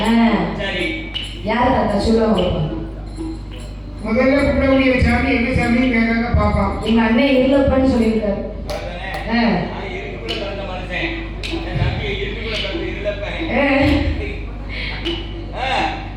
யாரு தாத்தா சொல்லுவாங்க? முதல்ல கும்பிடக்கூடிய சாமி என்ன சாமி கேட்காங்க பாப்பா. எங்க அண்ணன் இருளப்பன்னு சொல்லியிருக்காரு.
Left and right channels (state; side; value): identical; both; correlation 1.00